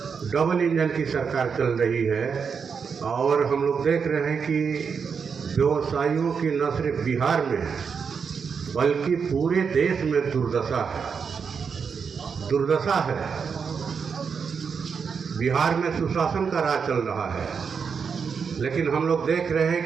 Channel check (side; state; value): left; quieter; 6.1 dB